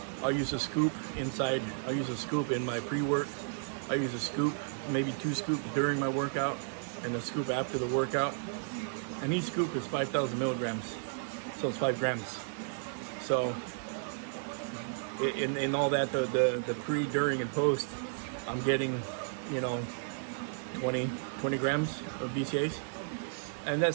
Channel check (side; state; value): left; silent; digital silence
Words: I'll use a scoop inside. I'll use a scoop in my pre-work. I use a scoop, maybe 2 scoops during my workout, and a scoop after the workout. And each scoop is 5,000 milligrams, so it's 5 grams. So in all that, the pre, during, and post, I'm getting, you know, 20 grams of BCAs. And